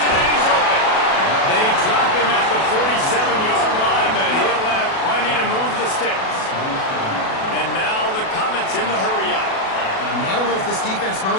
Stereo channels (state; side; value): late; right; 37 ms